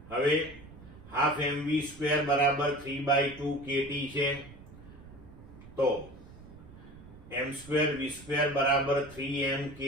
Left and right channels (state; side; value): noise; right; rumble, 18 dB below the sound